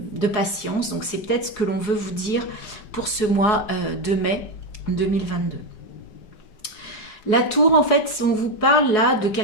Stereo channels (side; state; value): right; late; 4.8 ms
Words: patience. Donc c'est peut-être ce que l'on veut vous dire pour ce mois de mai 2022. La tour, en fait, on vous parle là de